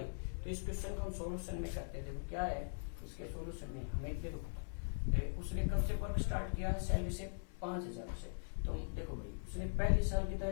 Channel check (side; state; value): right; silent; digital silence